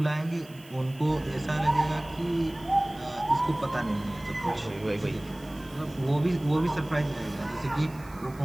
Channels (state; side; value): noise; right; hiss, 24 dB below the sound